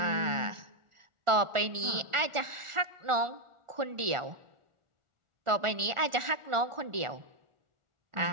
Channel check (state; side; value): late; left; 1.4 ms